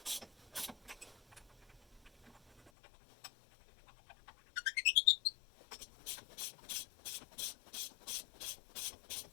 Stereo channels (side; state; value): right; drops out; at 2.7 s